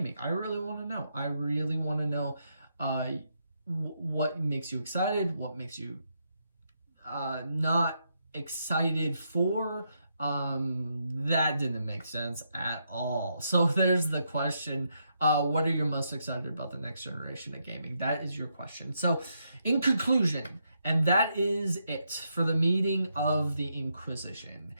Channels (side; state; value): both; inverted; correlation -0.80